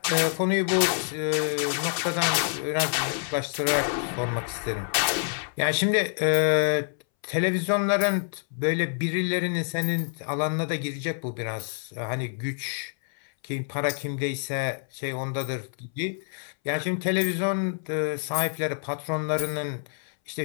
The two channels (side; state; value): right; silent; 60 dB below the other